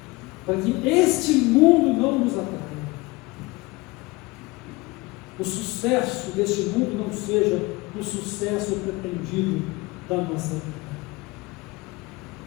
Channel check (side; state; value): right; quieter; 22.9 dB